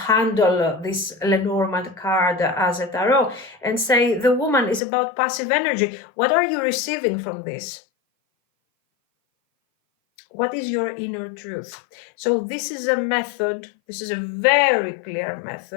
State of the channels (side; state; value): right; drops out; at 4.8 s